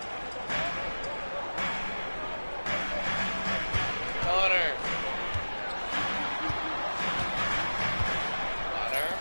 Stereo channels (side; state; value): both; inverted; correlation -1.00